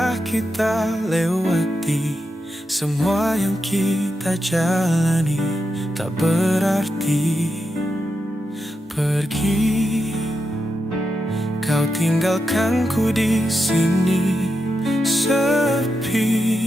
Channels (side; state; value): both; normal; correlation 0.87